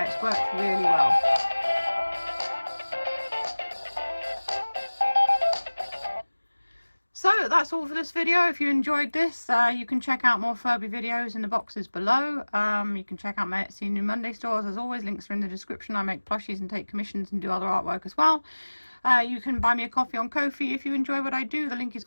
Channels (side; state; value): both; inverted; correlation -1.00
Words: worked really well. So that's all for this video. If you enjoyed this, you can check out more Furby videos in the boxes below. You can check out my Etsy New Monday stores. As always, links are in the description. I make plushies and take commissions and do other artwork as well. You can buy me a coffee on Ko-fi if you enjoy what I do. The link is